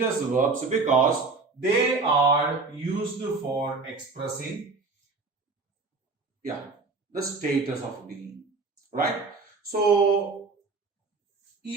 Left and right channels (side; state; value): left; quieter; 4.0 dB